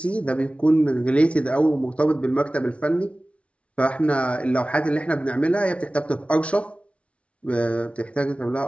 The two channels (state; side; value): late; right; 0.062 ms